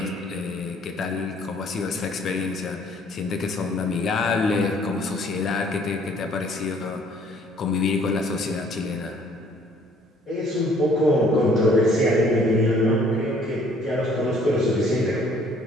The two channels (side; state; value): both; normal; correlation 0.60